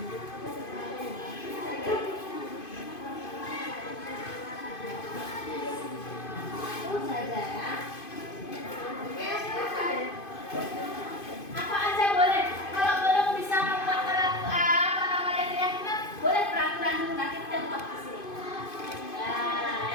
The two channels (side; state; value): right; late; 2.5 ms